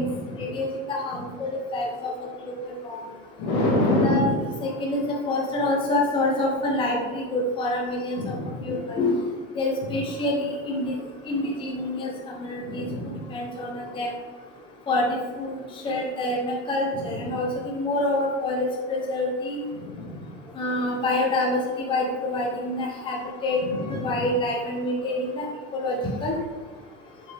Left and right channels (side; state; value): both; normal; correlation 0.18